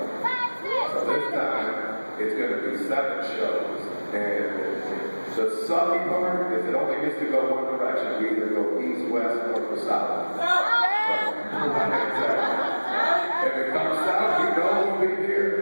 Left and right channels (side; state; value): both; inverted; correlation -1.00